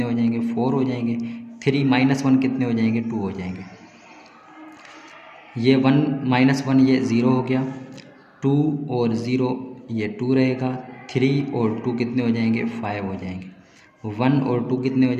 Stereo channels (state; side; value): identical; both; correlation 1.00